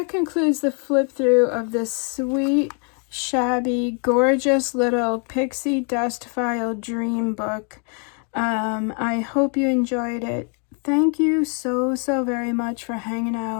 concludes the flip through of this sweet, shabby, gorgeous little pixie dust file dream book. I hope you enjoyed it. Thank you so very much for hanging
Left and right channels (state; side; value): quieter; right; 39.3 dB